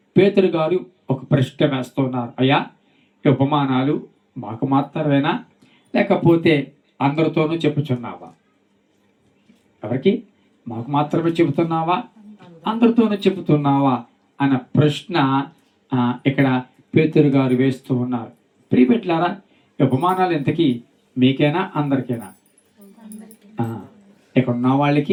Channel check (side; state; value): both; identical; correlation 1.00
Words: పేతురు గారు ఒక ప్రశ్న వేస్తున్నారు, అయ్యా ఈ ఉపమానాలు మాకు మాత్రమేనా, లేకపోతే అందరితోనూ చెప్పుచున్నావా? ఎవరికి? మాకు మాత్రమే చెబుతున్నావా, అందరితోనూ చెబుతున్నావా అన్న ప్రశ్న ఇక్కడ పేతురు గారు వేస్తూ ఉన్నారు. ప్రియపెట్లారా, ఉపమానాలు ఎంతకీ మీకేనా అందరికైనా? ఇక్కడ ఉన్న